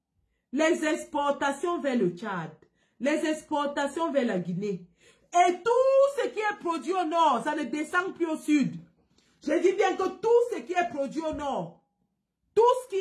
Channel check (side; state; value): both; identical; correlation 1.00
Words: les exportations vers le Tchad, les exportations vers la Guinée. Et tout ce qui est produit au nord, ça ne descend plus au sud. Je dis bien que tout ce qui est produit au nord, tout ce qui